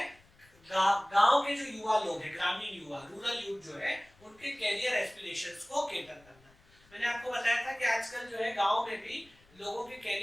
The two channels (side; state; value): left; noise; rumble, 29 dB below the sound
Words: गांव के जो युवा लोग हैं, ग्रामीण युवा, रूरल यूथ जो है, उनके कैरियर एस्पिरेशंस को केटर करना। मैंने आपको बताया था कि आजकल जो है गांव में भी लोगों के